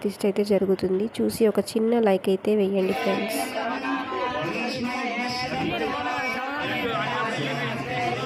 అయితే జరుగుతుంది. చూసి ఒక చిన్న లైక్ అయితే వేయండి ఫ్రెండ్స్.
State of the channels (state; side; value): identical; both; correlation 1.00